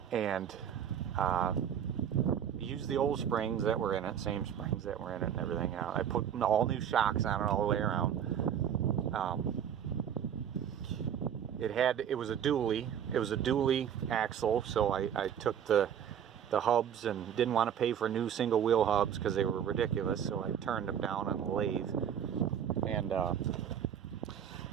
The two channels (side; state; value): left; quieter; 8.9 dB